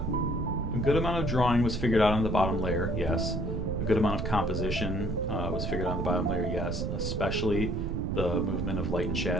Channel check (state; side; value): noise; right; rumble, 2 dB below the sound